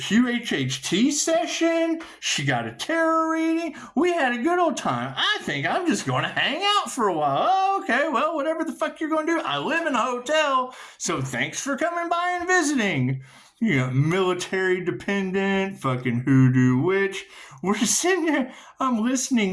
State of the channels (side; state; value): both; identical; correlation 1.00